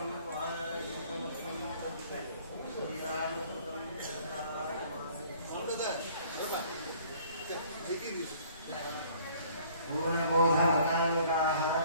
वानरयुतमुखं श्रीरामकृतं पूर्णबोधमतानुगाः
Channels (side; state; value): both; inverted; correlation -0.56